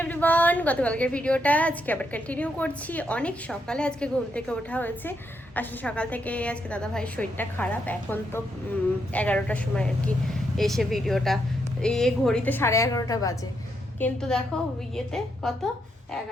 এভরিওয়ান, গতকালকের ভিডিওটা আজকে আবার কন্টিনিউ করছি। অনেক সকালে আজকে ঘুম থেকে ওঠা হয়েছে, আসলে সকাল থেকে আজকে দাদা ভাইয়ের শরীরটা খারাপ, এখন তো 11টার সময় আর কি এসে ভিডিওটা, এই ঘড়িতে 11:30 বাজে, কিন্তু দেখো ইয়েতে কত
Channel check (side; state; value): both; normal; correlation 0.79